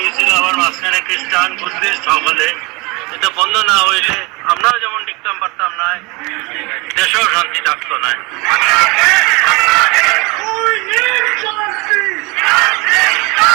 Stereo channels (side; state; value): left; quieter; 26.6 dB